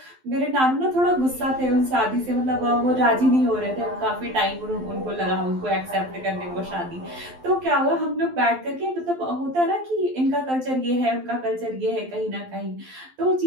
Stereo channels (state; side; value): late; left; 12 ms